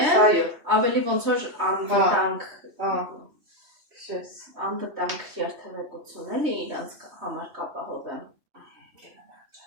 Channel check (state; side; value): late; left; 3.2 ms